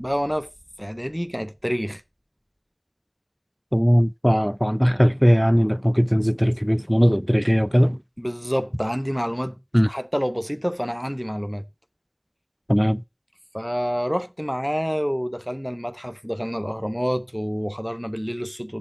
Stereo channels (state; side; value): identical; both; correlation 1.00